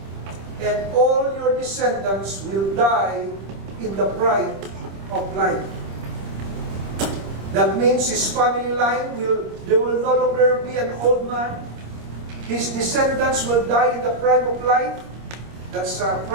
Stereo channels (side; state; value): left; late; 26 ms